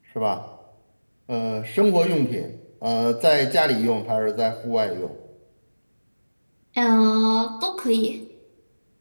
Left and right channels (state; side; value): inverted; both; correlation -1.00